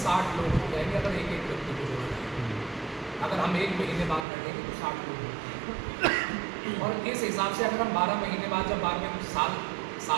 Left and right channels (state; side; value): drops out; left; at 4.2 s